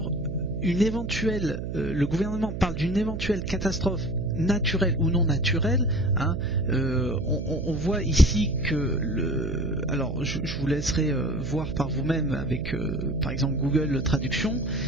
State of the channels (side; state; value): right; noise; hum, 5 dB below the sound